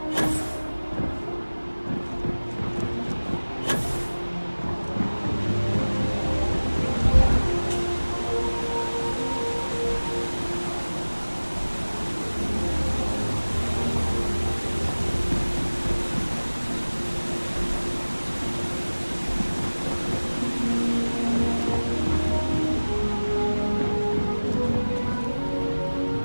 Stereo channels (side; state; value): both; inverted; correlation -1.00